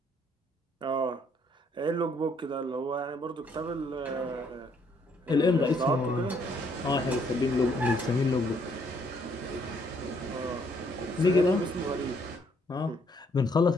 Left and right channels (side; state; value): both; normal; correlation 0.68